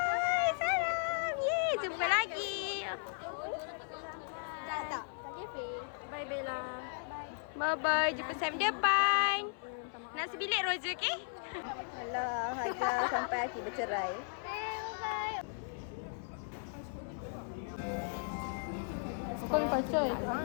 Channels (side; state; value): right; silent; 54 dB below the other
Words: salam. Yeay, jumpa lagi. Tak. Cafe. Bye Bella. Bye-bye. Jumpa saya depan. Nak sebilik Roger, okey? Alah, hanya sampai akhir bercerai. Sekarang kacau yang